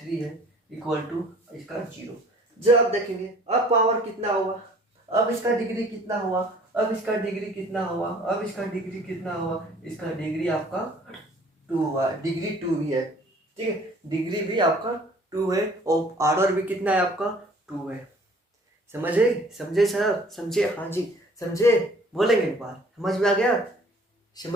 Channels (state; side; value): normal; both; correlation 0.53